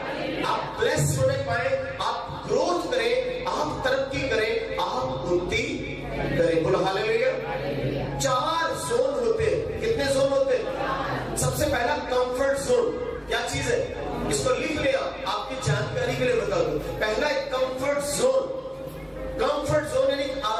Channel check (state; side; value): identical; both; correlation 1.00